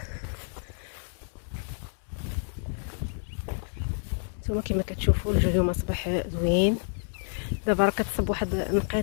نتوما كما كتشوفوا الجو اليوم اصبح زوين. دابا راه كتصب واحد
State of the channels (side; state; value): right; silent; 58 dB below the other